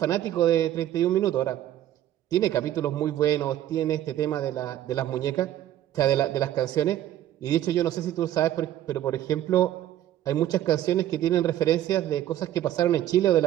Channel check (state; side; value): quieter; left; 12.5 dB